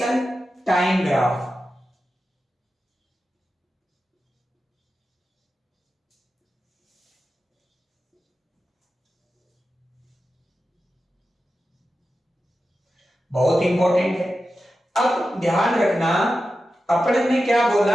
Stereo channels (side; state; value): both; normal; correlation 0.92